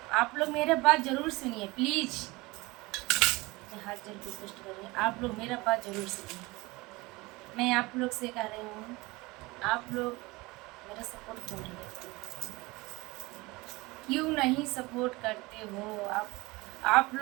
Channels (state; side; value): quieter; left; 22.7 dB